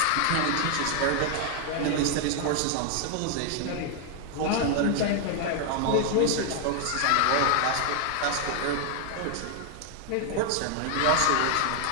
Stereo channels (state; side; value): different; both; correlation 0.00